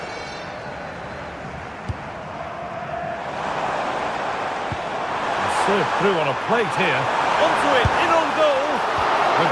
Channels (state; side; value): identical; both; correlation 1.00